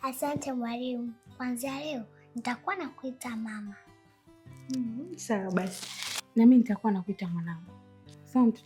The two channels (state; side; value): identical; both; correlation 1.00